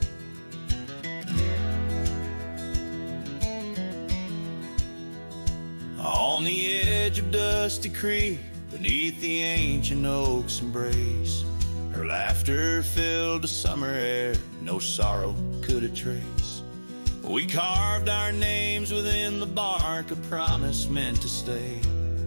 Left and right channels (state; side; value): inverted; both; correlation -1.00